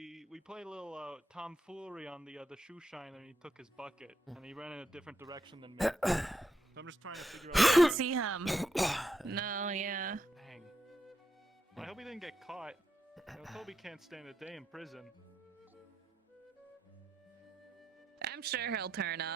played a little tomfoolery on the shoe shiner, and he took his bucket, and he ran in a different direction than me. So I'm just trying to figure out. See him. No, yeah. Dang. I hope he didn't get caught. You know, Toby can't stand a day in prison. I'm sure he'll turn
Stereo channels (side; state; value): both; normal; correlation 0.82